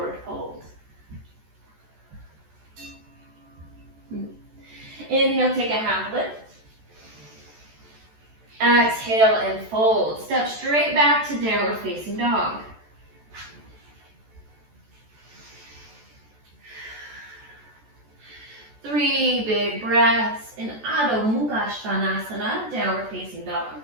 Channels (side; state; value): left; late; 14 ms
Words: fold. Inhale, take a half lift. Exhale and fold. Step straight back to downward facing dog. Three big breaths in Adho Mukha Svanasana, downward facing dog.